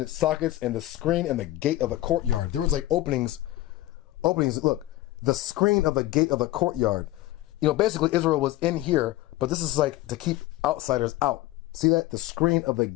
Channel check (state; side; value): quieter; right; 16.2 dB